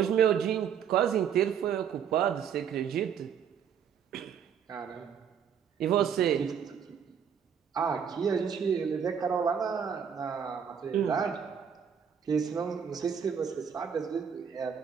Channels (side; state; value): left; quieter; 7.8 dB